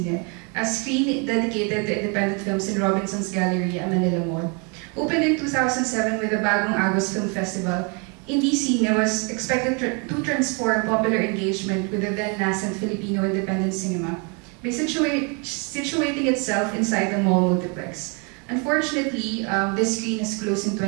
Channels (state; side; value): quieter; left; 32.8 dB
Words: a screen dedicated to independent films in Robinson's Gallery at Manila Mall. Opened in 2007 with the Bagong Agos Film Festival, Indie Cine was expected to transform popular engagement with the then-nascent Filipino independent cinema by situating itself inside the mall multiplex. Unfortunately, this screen has closed in